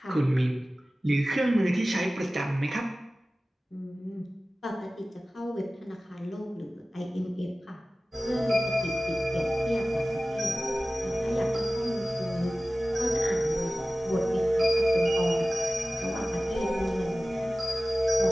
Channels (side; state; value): both; normal; correlation 0.97